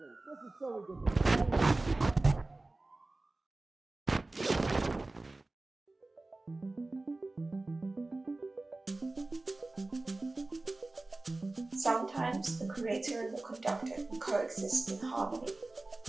Sometimes the creator and the conductor can coexist in harmony.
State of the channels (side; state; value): left; quieter; 3.0 dB